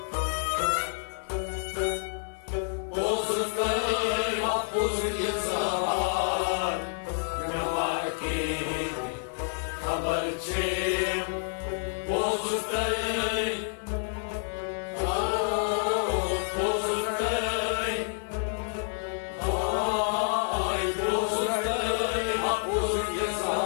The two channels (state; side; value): silent; right; digital silence